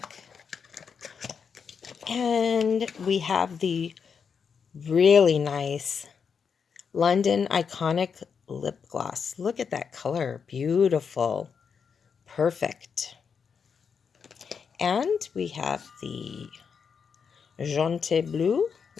And we have the really nice London Iconic Lip Gloss. Look at that color. Beautiful. Perfect. And we have the Jaunty Bleu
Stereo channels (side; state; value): right; quieter; 6.3 dB